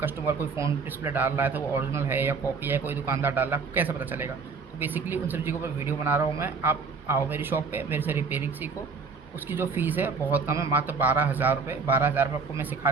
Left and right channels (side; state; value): left; quieter; 4.8 dB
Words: कोई फ़ोन डिस्प्ले डाल रहा है तो वो ओरिजिनल है या कॉपी है, कोई दुकानदार डाल रहा है आपको कैसे पता चलेगा। तो बेसिकली उन सब चीज़ों पर वीडियो बना रहा हूँ मैं। आप आओ मेरी शॉप पे, मेरे से रिपेयरिंग सीखो। उसकी जो फ़ीस है बहुत कम है, मात्र 12,000 रुपये। 12,000 रुपये आपको मैं